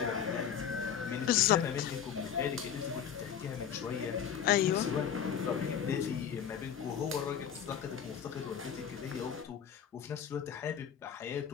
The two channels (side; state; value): right; quieter; 8.5 dB